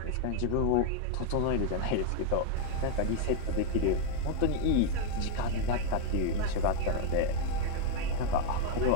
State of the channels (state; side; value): different; both; correlation 0.00